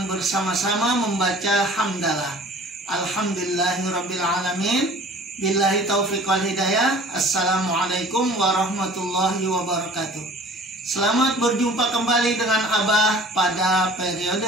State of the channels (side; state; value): both; normal; correlation 0.47